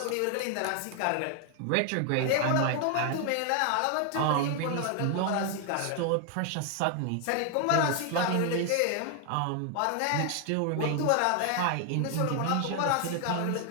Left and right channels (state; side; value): different; both; correlation 0.00